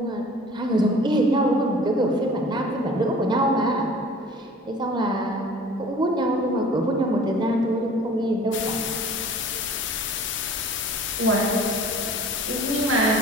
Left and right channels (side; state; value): both; normal; correlation 0.46